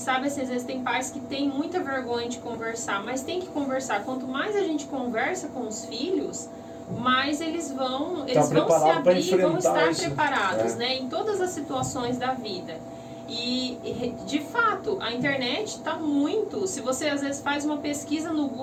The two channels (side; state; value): both; identical; correlation 1.00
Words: assim, às vezes tem pais que têm muita vergonha de conversar, mas tem que conversar. Quanto mais a gente conversa com os filhos, mais eles vão se abrir e vão estar preparados, né? Em todas as situações da vida. E, de fato, a internet está muito... Se você, às vezes, faz uma pesquisa no